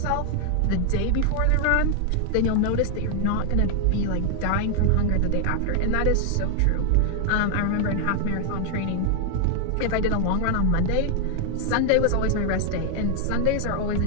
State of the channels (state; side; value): different; both; correlation 0.00